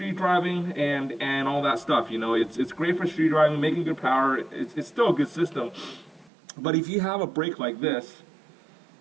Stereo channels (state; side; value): drops out; left; at 6.3 s